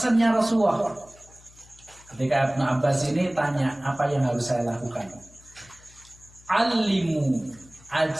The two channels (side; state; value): left; noise; hum, 25 dB below the sound